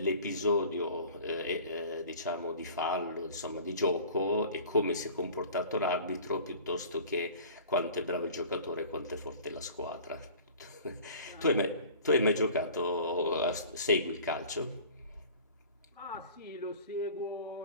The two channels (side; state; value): both; inverted; correlation -0.44